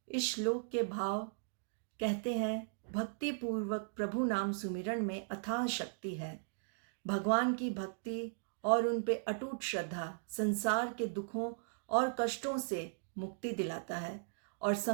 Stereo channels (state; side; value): silent; left; digital silence